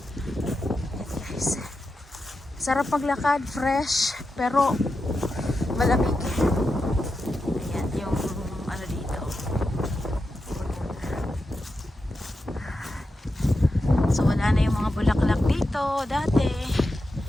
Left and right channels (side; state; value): both; normal; correlation 0.89